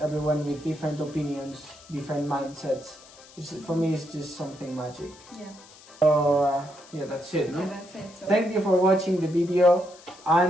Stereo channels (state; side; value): noise; left; hiss, 22 dB below the sound